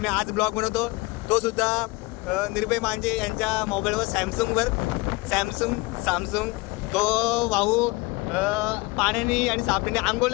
मी आज ब्लॉग बनवतो. तो सुद्धा निर्भय मांजे यांच्या मोबाईलवर सॅमसंग तो भाऊ पाण्याने आणि साबणीने आंघोळ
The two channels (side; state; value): right; quieter; 24.0 dB